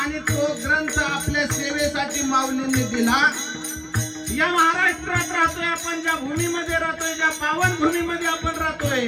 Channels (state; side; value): identical; both; correlation 1.00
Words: तो ग्रंथ आपल्या सेवेसाठी माऊलींनी दिला. या महाराष्ट्रात राहतोय आपण, ज्या भूमीमध्ये राहतोय, ज्या पावन भूमीमध्ये आपण